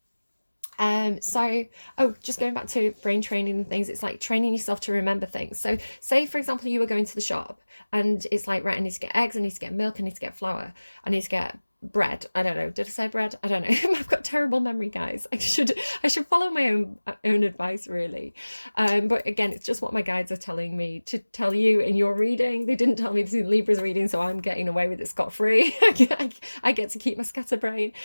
So, oh, just going back to brain training and things, it's like training yourself to remember things. So say, for example, you were going to the shop and it's like, right, I need to get eggs, I need to get milk, I need to get flour, I need to get bread. I don't know. Did I say bread? I don't know. I've got terrible memory, guys. I should follow my own advice, really. But again, it's just what my guides are telling me to tell you in your reading. They didn't tell me this in Libra's reading, so I'm getting away with it scot-free. I get to keep my scatterbrain.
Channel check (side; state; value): both; inverted; correlation -1.00